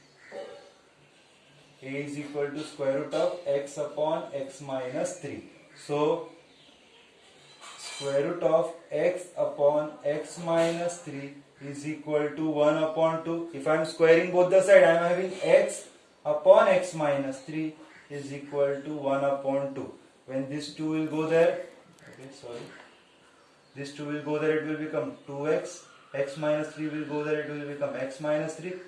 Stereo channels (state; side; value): identical; both; correlation 1.00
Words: a is equal to square root of x upon x minus 3. So square root of x upon x minus 3 is equal to 1 upon 2. If I am squaring both the sides, I am having x upon x minus 3 is equal to 1 upon 2. When this 2 will go there, okay, sorry, this 2 will go there, it will become 2x, x minus 3 will go there, it will become x minus 3,